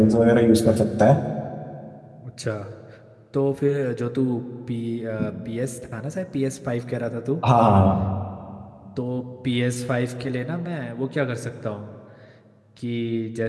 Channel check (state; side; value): identical; both; correlation 1.00